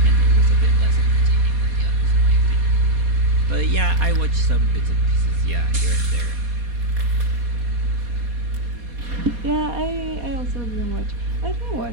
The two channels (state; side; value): late; left; 4.2 ms